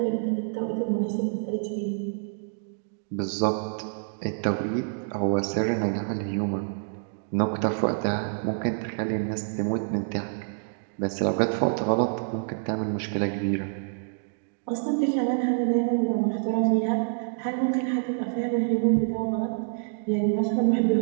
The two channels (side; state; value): left; silent; digital silence